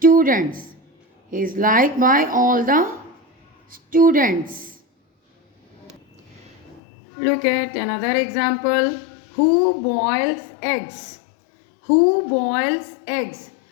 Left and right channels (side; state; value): right; drops out; at 6.8 s